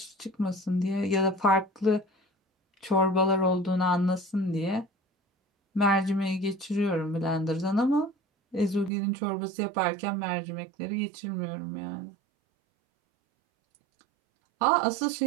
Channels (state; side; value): drops out; left; at 8.9 s